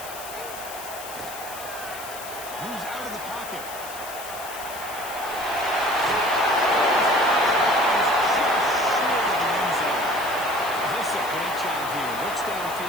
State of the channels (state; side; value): noise; left; hiss, 12 dB below the sound